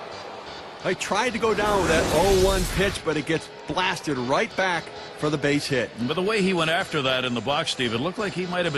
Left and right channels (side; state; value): both; identical; correlation 1.00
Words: I tried to go down with that 0-1 pitch, but it gets blasted right back for the base hit. But the way he went after that in the box, Steve, it looked like he might have